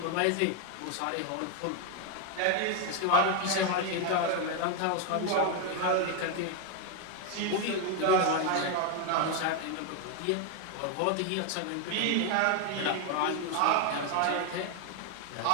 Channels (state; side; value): different; both; correlation 0.01